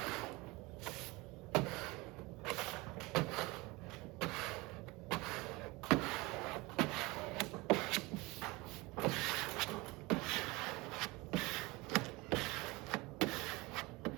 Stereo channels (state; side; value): quieter; left; 23.3 dB